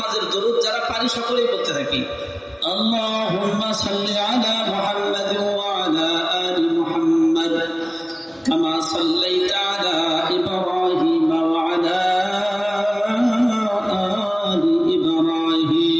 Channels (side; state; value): both; identical; correlation 1.00